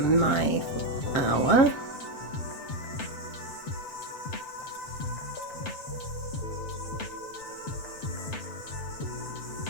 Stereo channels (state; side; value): late; right; 7.9 ms